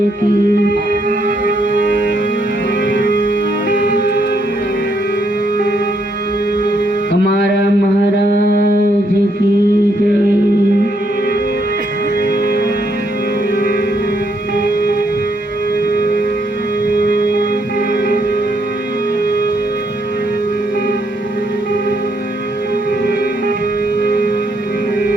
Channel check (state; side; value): normal; both; correlation 0.74